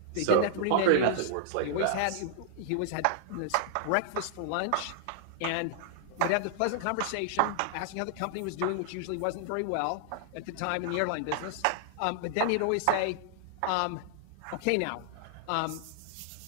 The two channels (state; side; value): different; both; correlation -0.01